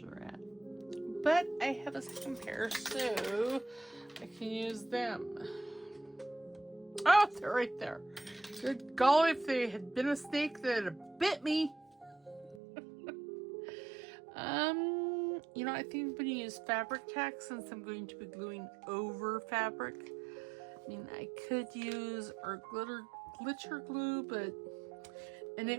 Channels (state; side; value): drops out; left; at 12.6 s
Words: are at. But I have a second pair, so I can use them. Oh, they're right there. Good golly, if they had been a snake, they'd have bit me. You know, I think I'm going to use fabric tack since I'm going to be gluing over fabric. I mean, I could use our glitter glue, and